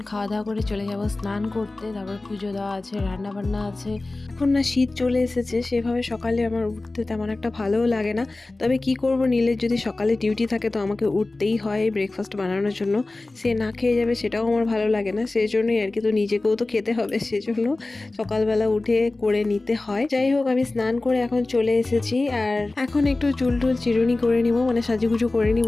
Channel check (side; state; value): right; quieter; 3.1 dB